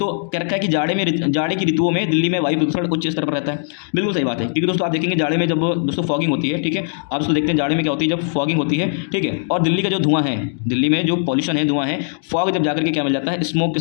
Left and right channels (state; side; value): silent; right; digital silence